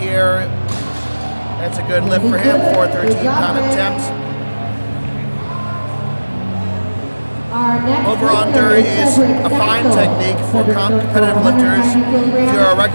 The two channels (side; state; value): both; inverted; correlation -1.00